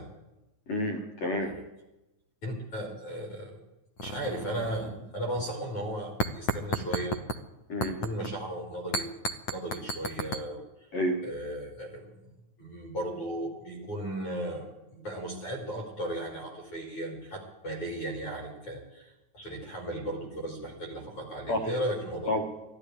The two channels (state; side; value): late; right; 9.4 ms